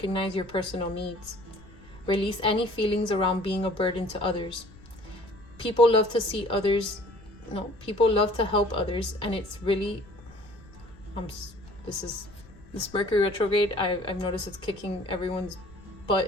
your personal needs. Release any feelings around being a burden to others. People love to help others, and it's really, this Mercury retrograde, I've noticed it's kicking everyone's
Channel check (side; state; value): left; noise; rumble, 22 dB below the sound